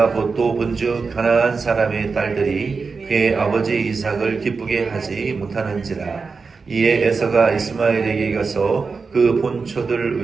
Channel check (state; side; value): quieter; left; 4.7 dB